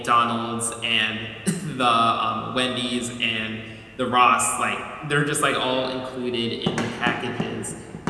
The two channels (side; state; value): both; identical; correlation 1.00